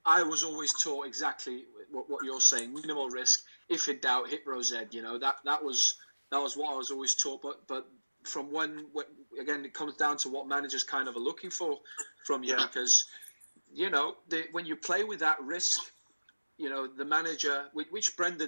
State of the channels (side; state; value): both; inverted; correlation -1.00